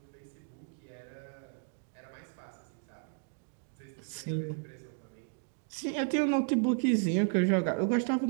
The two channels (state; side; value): silent; left; 55 dB below the other